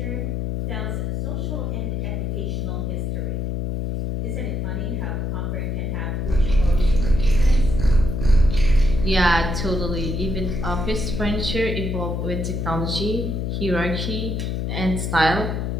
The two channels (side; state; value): left; noise; hum, 1 dB below the sound